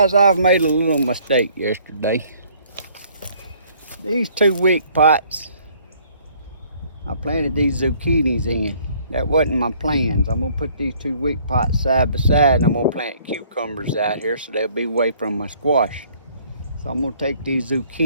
I've made a little mistake yesterday. These 2 wick pots, I planted these zucchinis in. That wasn't my plans. I'm gonna put these 2 wick pots side by side, and I'm gonna plant cucumbers out here so they'll be away from my squash. So I'm gonna take these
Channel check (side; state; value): both; inverted; correlation -0.60